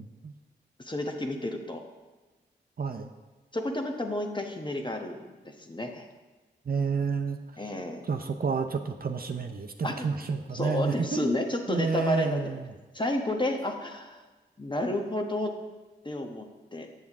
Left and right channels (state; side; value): normal; both; correlation 0.67